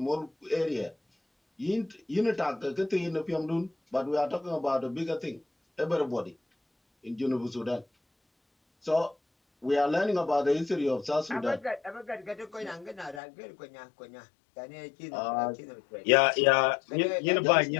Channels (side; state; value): right; drops out; at 13.2 s